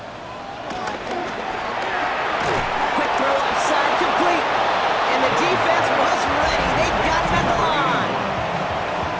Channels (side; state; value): both; identical; correlation 1.00